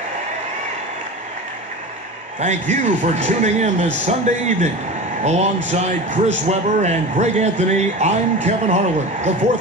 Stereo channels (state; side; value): normal; both; correlation 0.30